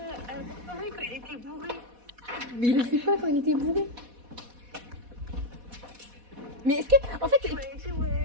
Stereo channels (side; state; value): left; late; 4.1 ms